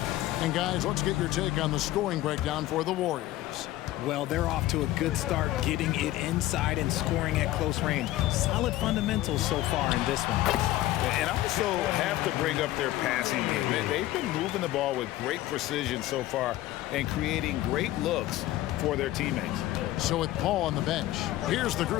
And guys, let's get your take on the scoring breakdown for the Warriors. Well, they're off to a good start getting it inside and scoring at close range. Solid fundamentals so far in this one. And I also have to bring up their passing game. They've been moving the ball with great precision so far and creating great looks for their teammates. So with Paul on the bench, here's the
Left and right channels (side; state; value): right; quieter; 15.6 dB